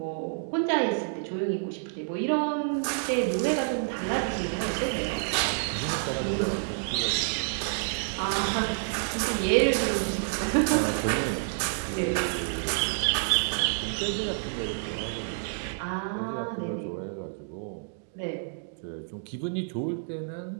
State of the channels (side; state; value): left; silent; digital silence